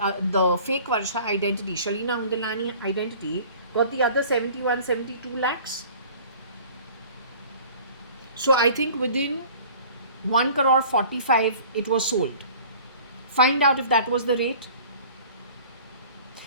the fake Varsha identity, Shalina Hundalani identity, got the other 72 lakhs. So I think within 1 crore 45 it was sold. Find out if that was the rate.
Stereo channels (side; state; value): both; inverted; correlation -0.47